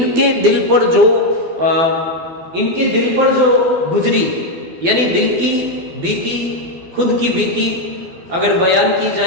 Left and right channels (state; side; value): late; left; 12 ms